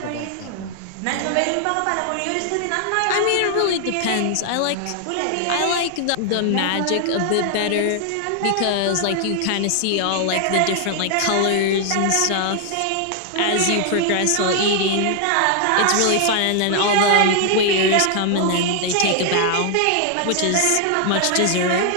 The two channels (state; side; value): different; both; correlation 0.00